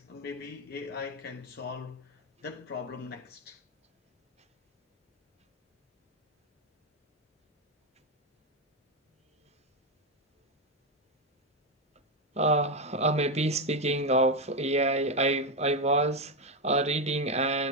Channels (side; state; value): both; normal; correlation 0.08